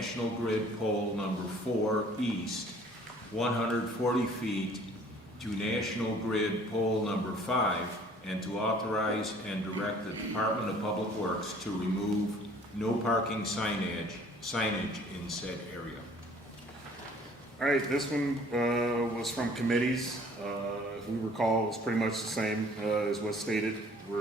Grid Pole number 4 East, 140 feet, to National Grid Pole number 5, and to authorize and direct the Department of Public Works to remove no parking signage in said area. All right, this one was from committees. If we recall, it's pretty much the same as what's stated.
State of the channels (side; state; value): both; normal; correlation 0.54